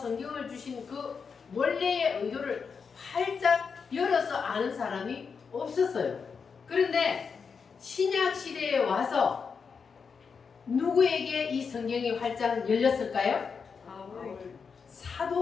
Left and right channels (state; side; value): quieter; right; 5.7 dB